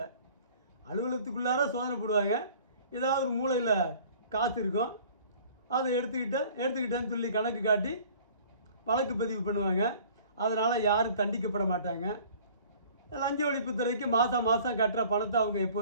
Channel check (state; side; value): inverted; both; correlation -0.50